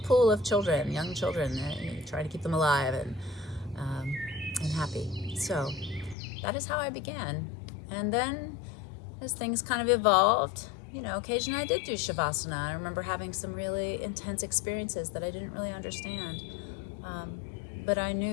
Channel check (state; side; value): drops out; right; at 6.2 s